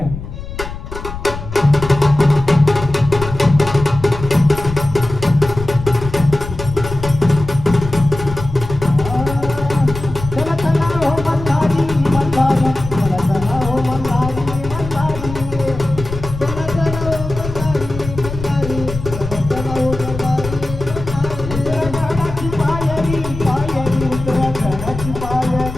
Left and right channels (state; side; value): noise; left; rumble, 9 dB below the sound